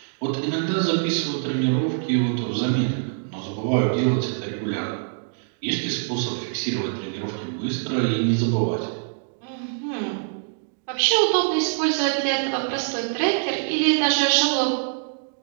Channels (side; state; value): left; silent; digital silence